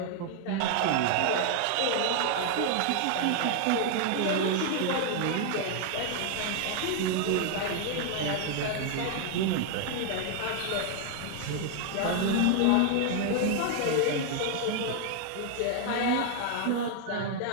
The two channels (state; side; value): different; both; correlation 0.00